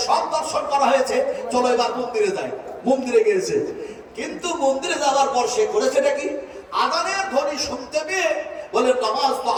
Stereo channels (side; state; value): both; identical; correlation 1.00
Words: সব দর্শন করা হয়েছে, চলো এবার মন্দিরে যাই। মন্দিরে গিয়েছে, কিন্তু মন্দিরে যাওয়ার পর সে করেছেটা কি? আযানের ধ্বনি শুনতে পেয়ে বলে নামাজ তো